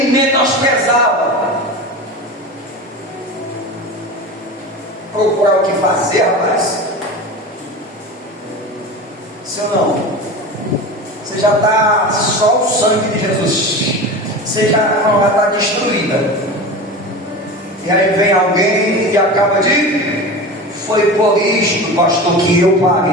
menosprezava. Procurar o que fazer, rapaz. Se ou não? Você já está só o sangue de Jesus. Você já está destruída. E aí vem alguém e acaba de foi por isto, pastor, que eu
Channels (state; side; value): normal; both; correlation 0.30